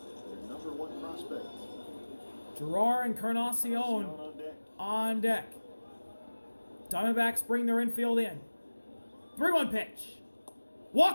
their number 1 prospect. Gerard Encarnacion on deck. Diamondbacks bring their infield in. 3-1 pitch.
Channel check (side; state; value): both; inverted; correlation -1.00